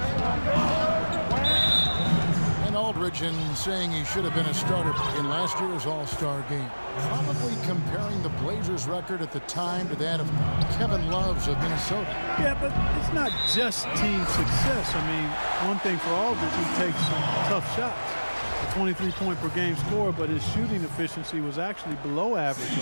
And Aldridge, in saying he should have been a starter in last year's All-Star game, probably comparing the Blazers record at the time to that of Kevin Love's of Minnesota. Yeah, but it's not just team success. I mean, one thing for Aldridge, he takes some tough shots. A 23-point per game score, but his shooting efficiency was actually below average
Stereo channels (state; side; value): inverted; both; correlation -1.00